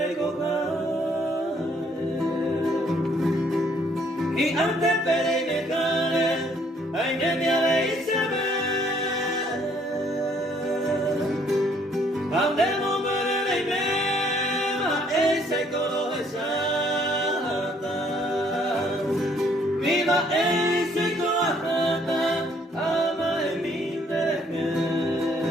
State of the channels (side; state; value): both; normal; correlation 0.64